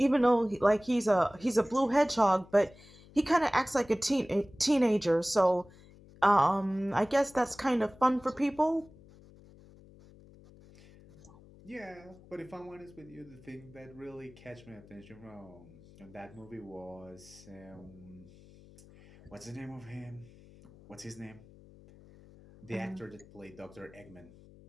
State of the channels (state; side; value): noise; left; hum, 23 dB below the sound